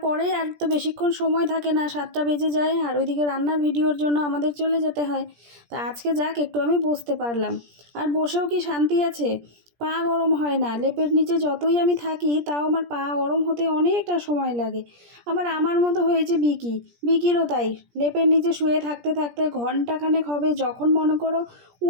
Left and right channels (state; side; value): late; left; 17 ms